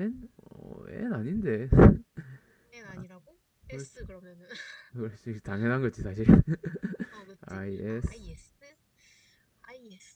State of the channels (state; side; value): identical; both; correlation 1.00